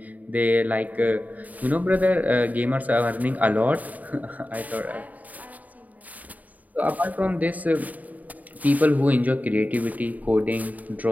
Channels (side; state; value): left; late; 0.075 ms